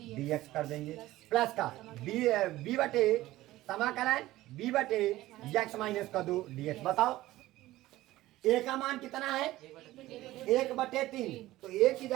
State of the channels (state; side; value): quieter; left; 16.5 dB